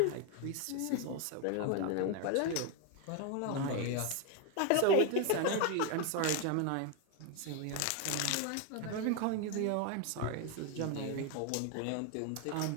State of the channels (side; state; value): both; different; correlation 0.01